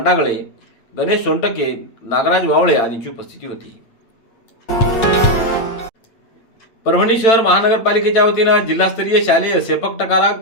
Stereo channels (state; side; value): late; right; 8.9 ms